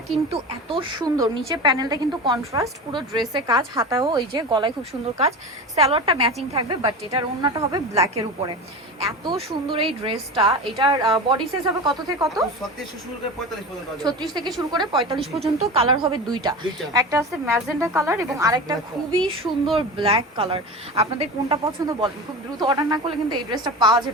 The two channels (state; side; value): normal; both; correlation 0.28